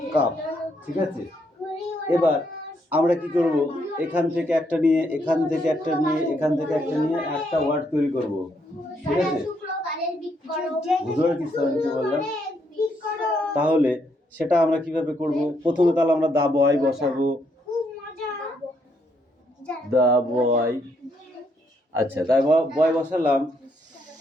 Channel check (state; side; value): normal; both; correlation 0.74